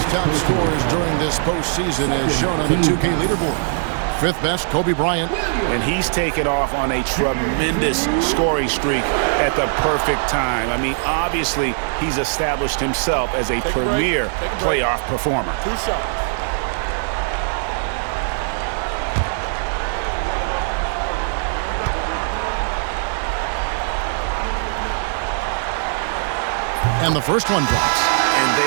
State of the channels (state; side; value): silent; left; digital silence